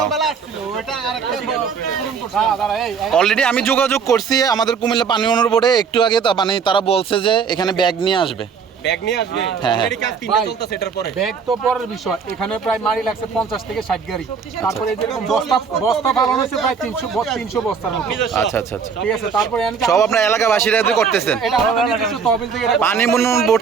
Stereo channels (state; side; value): quieter; left; 6.1 dB